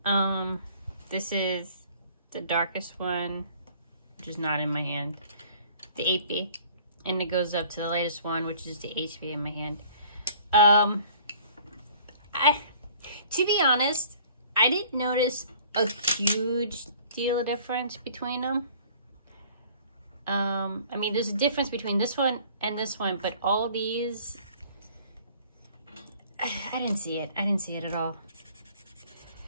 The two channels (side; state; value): both; inverted; correlation -0.53